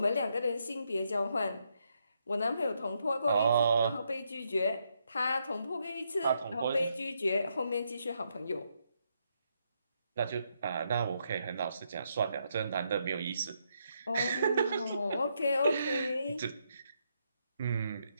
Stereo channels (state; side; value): inverted; both; correlation -0.78